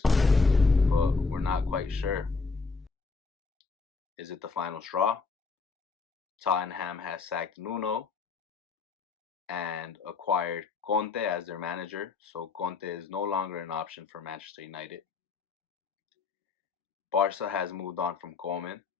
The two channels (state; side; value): quieter; right; 4.4 dB